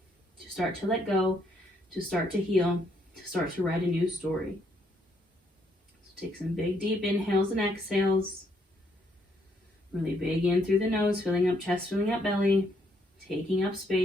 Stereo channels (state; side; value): normal; both; correlation 0.72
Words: to start to let go, to start to heal, to start to write a new story. So take some big, deep inhales and exhales. Really big in through the nose, filling up chest, filling up belly, taking up